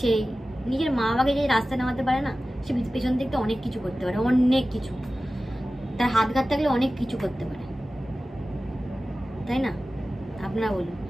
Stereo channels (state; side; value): normal; both; correlation 0.95